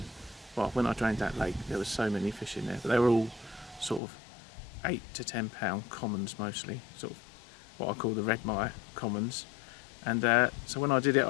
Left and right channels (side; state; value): right; drops out; at 4.0 s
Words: well, when I drained that lake there was so many fish in there, but they were all sort of 8 to 10 pound commons mostly, sort of what I call the Redmire commons. And so when I did it,